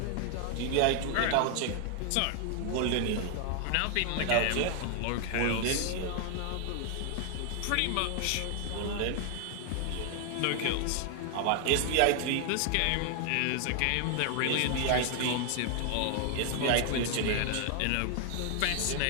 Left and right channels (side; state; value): both; different; correlation 0.00